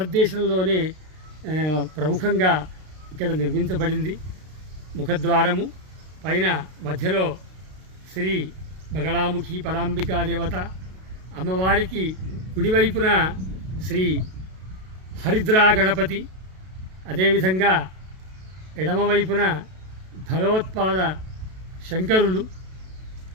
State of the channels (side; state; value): left; late; 32 ms